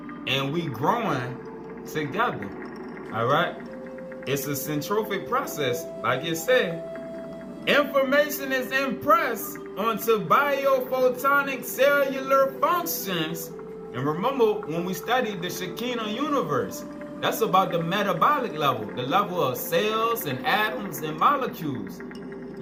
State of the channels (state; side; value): identical; both; correlation 1.00